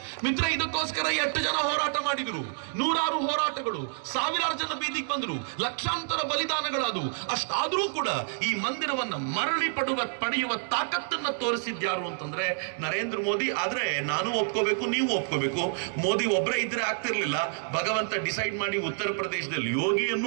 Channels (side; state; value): left; silent; digital silence